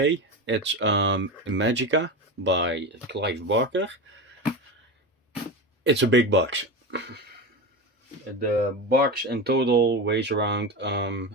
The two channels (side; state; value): both; normal; correlation 0.22